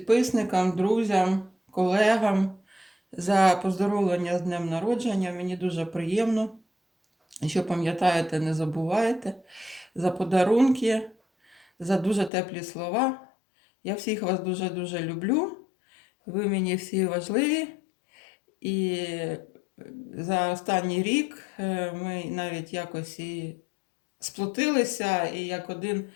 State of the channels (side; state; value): right; drops out; at 12.3 s